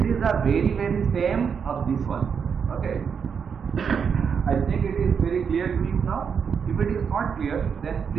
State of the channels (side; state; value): left; quieter; 6.7 dB